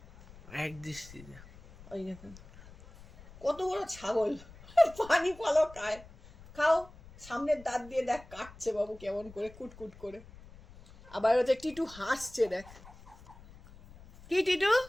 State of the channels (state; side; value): noise; left; rumble, 20 dB below the sound